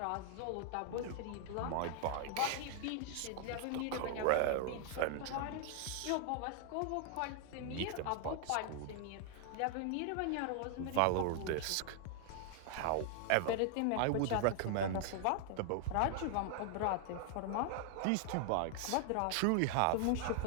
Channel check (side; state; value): both; different; correlation 0.00